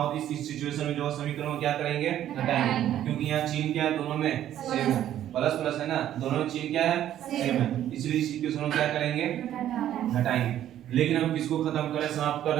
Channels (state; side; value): quieter; left; 11.6 dB